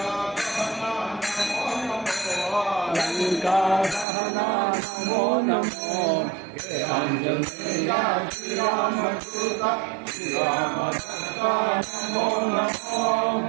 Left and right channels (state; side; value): drops out; left; at 4.0 s